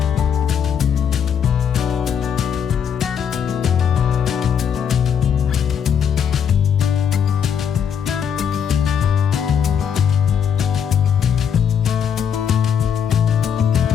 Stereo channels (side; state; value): right; quieter; 7.9 dB